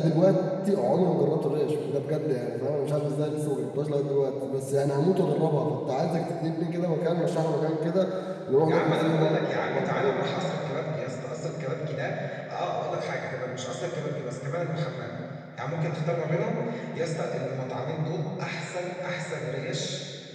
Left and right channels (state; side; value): identical; both; correlation 1.00